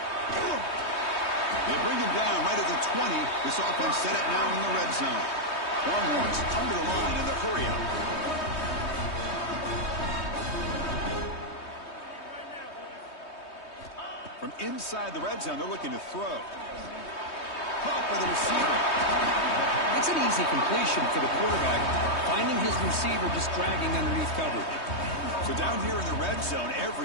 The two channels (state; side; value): late; right; 3.2 ms